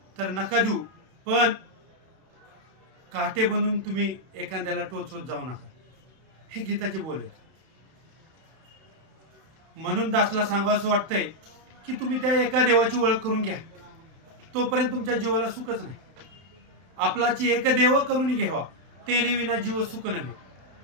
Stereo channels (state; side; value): late; left; 31 ms